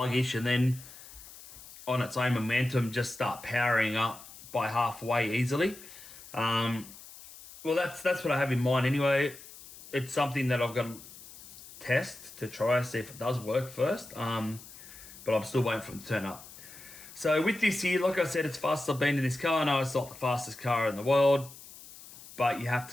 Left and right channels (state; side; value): noise; left; hiss, 18 dB below the sound